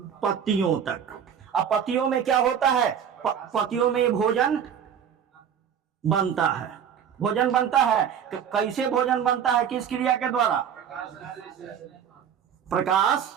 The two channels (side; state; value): left; quieter; 8.2 dB